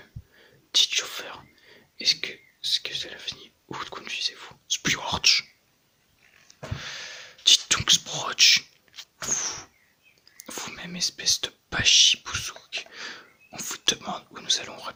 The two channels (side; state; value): both; identical; correlation 1.00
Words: Dites chauffeur, est-ce que cela finit? Où conduisez-vous? Sproch. Dites donc Sproch. Vous-même, espèce de bachibouzouk. On vous demande où nous allons,